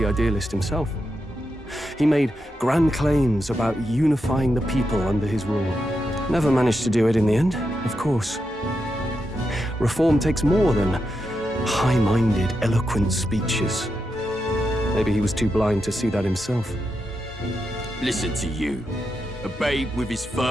idealist himself. He made grand claims about unifying the people under his rule. Never managed to do it in the end, of course. Reform takes more than high-minded, eloquent speeches. Maybe he was too blind to see that himself. Listen to you. A babe with his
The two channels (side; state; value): both; normal; correlation 0.86